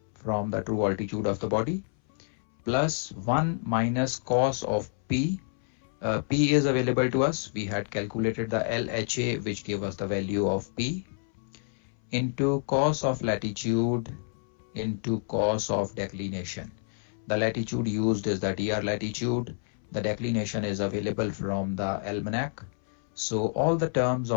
from the true altitude of the body, plus 1 minus cos of P. P is available to us. We had calculated the LHA, which gave us the value of P, into cos of latitude into cos of declination. The latitude used is the DR latitude. The declination is available from the almanac. So all the terms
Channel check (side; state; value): right; silent; 59 dB below the other